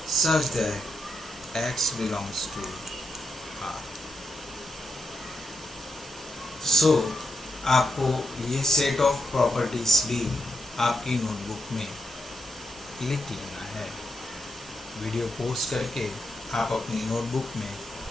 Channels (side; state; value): both; normal; correlation 0.84